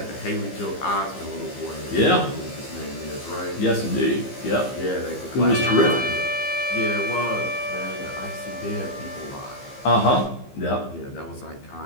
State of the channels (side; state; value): right; late; 15 ms